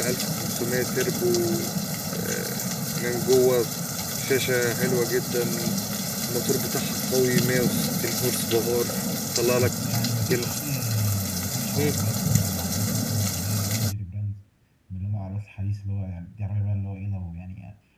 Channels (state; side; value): identical; both; correlation 1.00